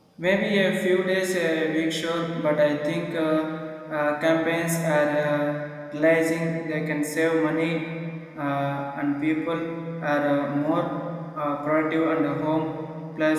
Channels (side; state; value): both; identical; correlation 1.00